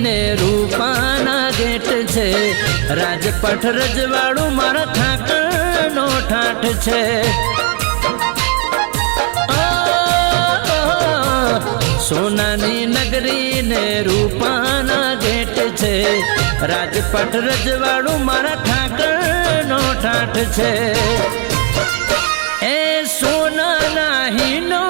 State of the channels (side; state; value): left; quieter; 36.5 dB